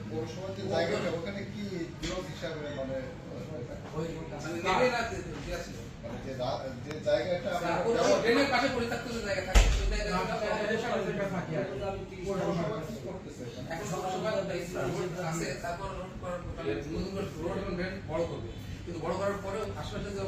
পৌরসভার যে জায়গাটা ওখানে কি বিরোধ হিসাবে মানে যে জায়গাটা পাশে পরিত্যক্ত জায়গা থাকে বড় করবে, কিন্তু বড় করার পরেও আশেপাশের যে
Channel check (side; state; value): both; identical; correlation 1.00